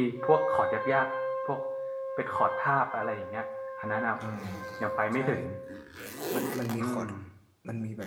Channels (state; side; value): identical; both; correlation 1.00